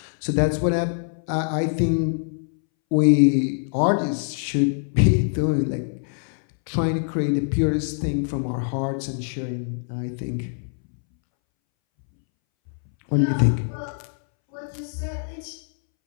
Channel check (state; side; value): silent; right; 63 dB below the other